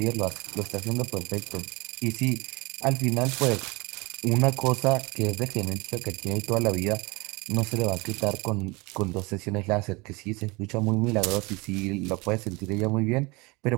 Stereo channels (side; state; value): left; quieter; 25.7 dB